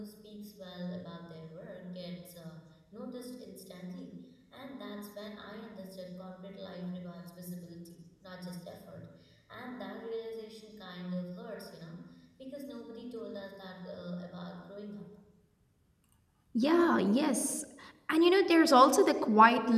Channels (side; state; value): both; identical; correlation 1.00